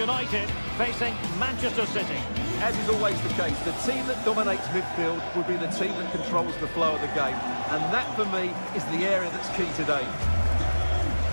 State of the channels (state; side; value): inverted; both; correlation -1.00